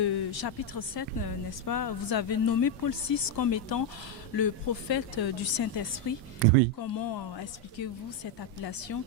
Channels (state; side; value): normal; both; correlation 0.04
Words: chapitre 7, n'est-ce pas, vous avez nommé Paul VI comme étant le prophète du Saint-Esprit. Oui. Comment expliquez-vous cette appellation